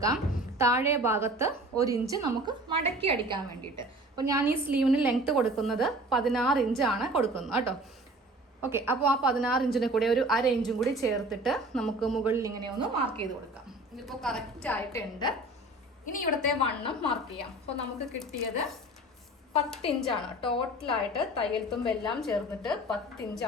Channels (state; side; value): normal; both; correlation 0.44